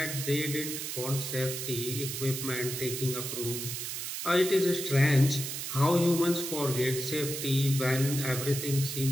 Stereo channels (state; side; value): noise; right; hiss, 5 dB below the sound